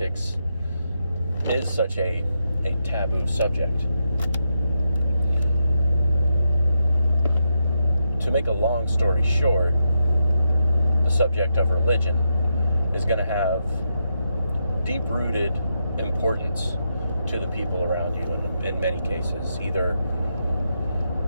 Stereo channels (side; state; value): both; inverted; correlation -0.83